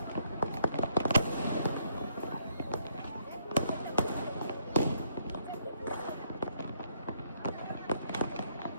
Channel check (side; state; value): both; inverted; correlation -0.70